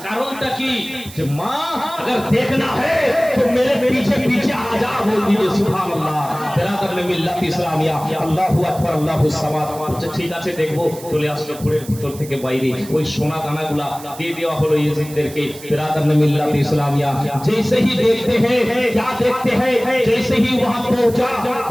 কারণটা কি? যে মা अगर देखना है तो मेरे पीछे पीछे आ जा, बोल दीजिए सुभान अल्लाह। बिरादर ने मिल्लत इस्लामिया আল্লাহু আকবার আল্লাহু সামাদ। আচ্ছা ঠিক আছে দেখবো। চলে আসলো ঘরের ভিতর থেকে বাইরে, ওই সোনা দানাগুলা দিয়ে দেওয়া হলো ইয়েজিদদেরকে। बिरादर ने मिल्लत इस्लामिया जैसे ही देखते हैं, क्या देखते हैं, जैसे ही वहां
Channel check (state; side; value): noise; right; hiss, 17 dB below the sound